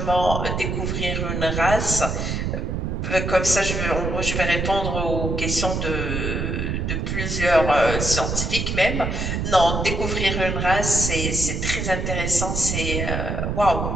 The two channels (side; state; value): right; noise; rumble, 1 dB below the sound